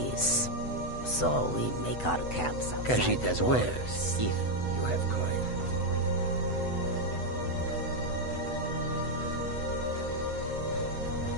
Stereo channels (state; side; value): late; right; 8.0 ms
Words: so we make our camps outside Khajiit as the well, walls. if you have coin.